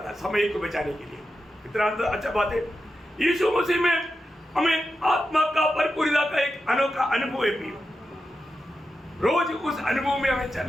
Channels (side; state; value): both; normal; correlation 0.89